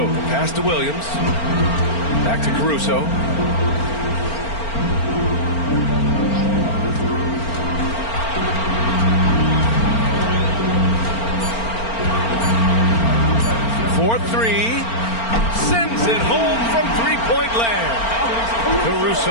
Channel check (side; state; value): right; late; 4.4 ms